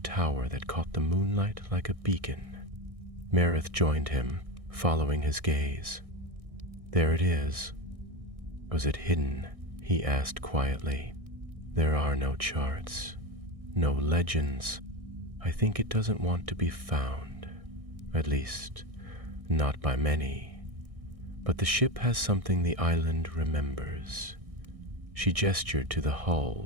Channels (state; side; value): late; left; 1.6 ms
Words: that caught the moonlight like a beacon. Merith joined him, following his gaze. "There it is." "Was it hidden?" he asked quietly. "There are no charts, no legends. I think it doesn't want to be found. At least, not by many. But the ship has something the island remembers." She gestured to the